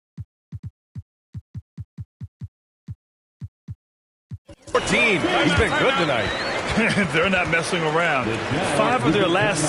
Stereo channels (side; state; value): both; identical; correlation 1.00